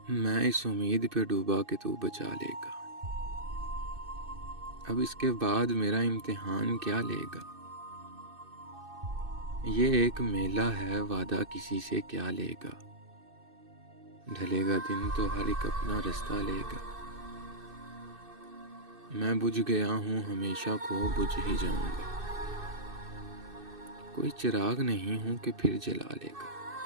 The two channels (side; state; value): left; late; 2.6 ms